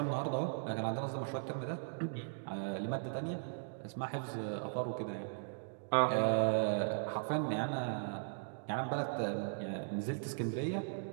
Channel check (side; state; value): left; silent; digital silence